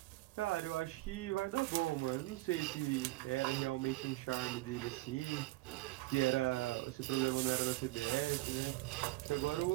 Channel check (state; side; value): quieter; left; 19.9 dB